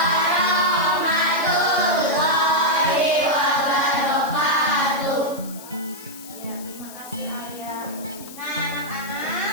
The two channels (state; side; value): noise; left; hiss, 16 dB below the sound